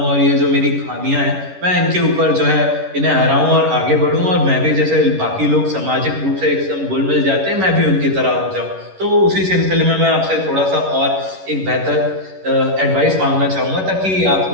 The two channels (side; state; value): left; late; 11 ms